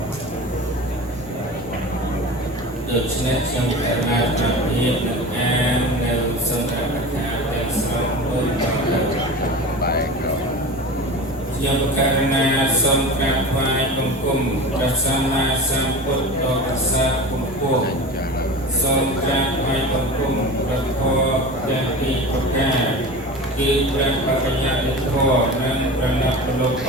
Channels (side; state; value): both; normal; correlation 0.32